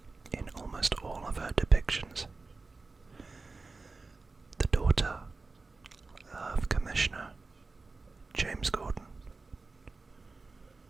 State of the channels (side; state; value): left; quieter; 3.8 dB